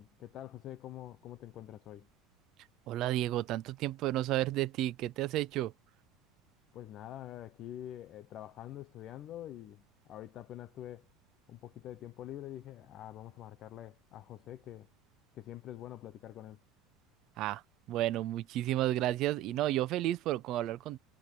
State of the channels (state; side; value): quieter; left; 9.8 dB